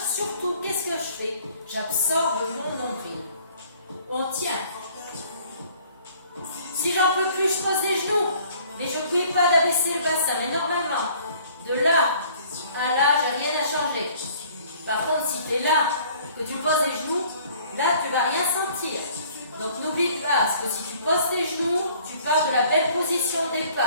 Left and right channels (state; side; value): inverted; both; correlation -0.55